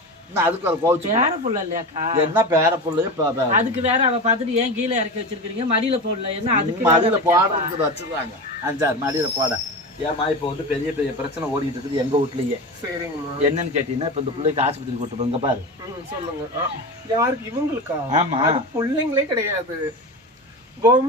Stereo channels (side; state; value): both; normal; correlation 0.25